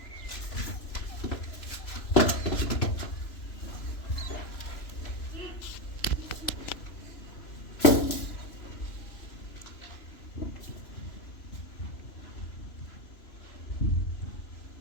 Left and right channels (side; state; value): right; late; 3.0 ms